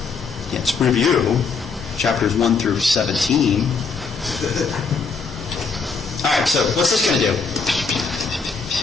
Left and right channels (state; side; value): quieter; right; 4.9 dB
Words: Yeah, it's review, chapters 1 through 17. All right, so what's this going to do?